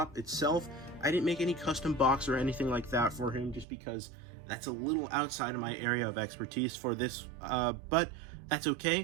itself. I didn't make any custom box or anything like that for him just because that's a little outside of my area of expertise for this, but that's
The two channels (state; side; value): drops out; left; at 3.7 s